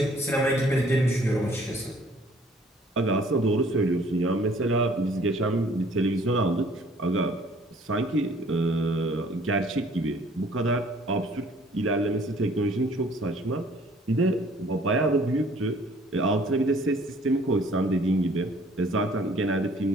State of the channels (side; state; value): both; normal; correlation 0.57